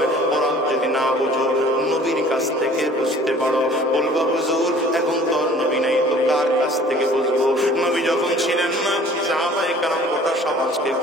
কোরআন যদি না বুঝো নবীর কাছ থেকে বুঝতে পারো, বলবা হুজুর এখন তো নবী নাই তো কার কাছ থেকে বুঝবো? নবী যখন ছিলেন না সাহাবায়ে কেরাম গোটা সমাজকে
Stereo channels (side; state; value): both; normal; correlation 0.50